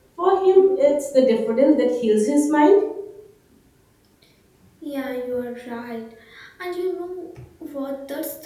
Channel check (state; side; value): identical; both; correlation 1.00